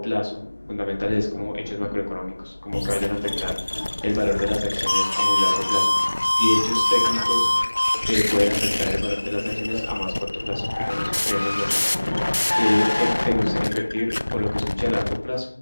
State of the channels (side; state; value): both; inverted; correlation -1.00